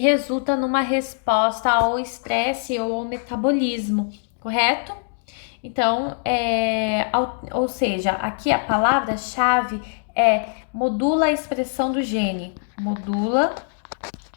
numa resposta ao estresse ou ao metabolismo, correto? Então, ou seja, aqui a palavra-chave é modula a expressão do gene. Modula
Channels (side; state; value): right; silent; 64 dB below the other